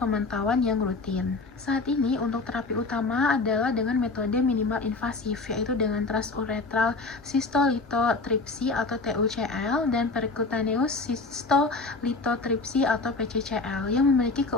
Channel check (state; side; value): quieter; right; 3.7 dB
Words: yang rutin. Saat ini, untuk terapi utama adalah dengan metode minimal invasif, yaitu dengan transuretral cystolithotripsy atau TUCL dan percutaneous cystolithotripsy atau PCCL yang memiliki